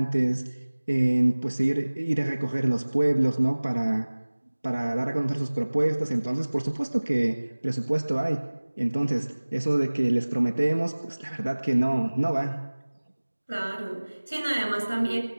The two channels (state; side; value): inverted; both; correlation -1.00